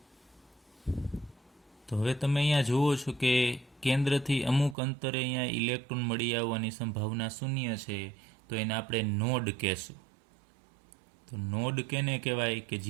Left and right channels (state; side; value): drops out; left; at 4.8 s